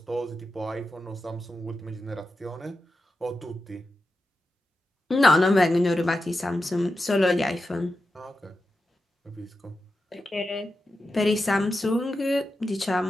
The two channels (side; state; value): both; normal; correlation 0.90